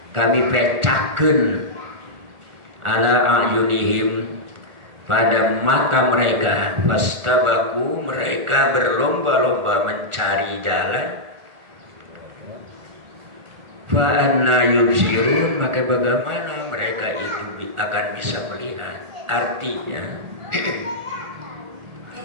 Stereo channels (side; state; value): left; late; 1.4 ms